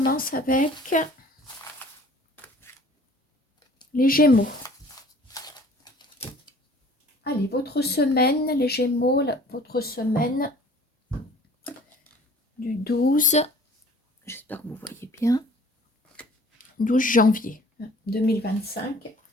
avec les Gémeaux. Allez, votre semaine, les Gémeaux, votre semaine du 12, j'espère que vous voyez bien, 12 janvier 2025.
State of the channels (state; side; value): normal; both; correlation 0.51